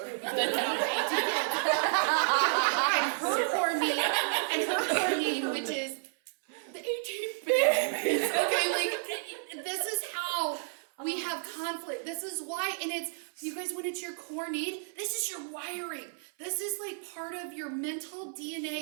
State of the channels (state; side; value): silent; left; 56 dB below the other